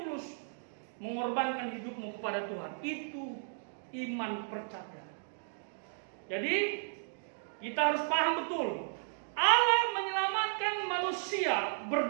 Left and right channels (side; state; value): left; silent; digital silence